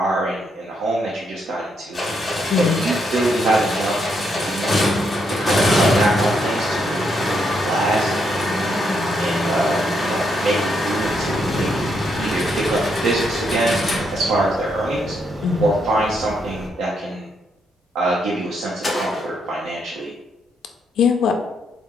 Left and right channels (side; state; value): both; normal; correlation 0.77